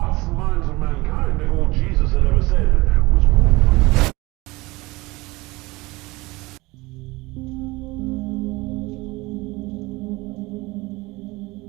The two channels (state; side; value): quieter; left; 22.0 dB